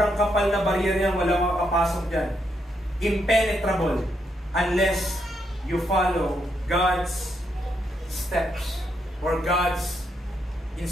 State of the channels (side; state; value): both; normal; correlation 0.78